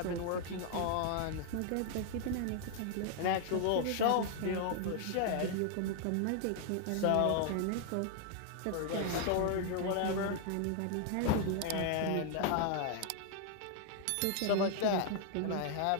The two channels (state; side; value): different; both; correlation 0.00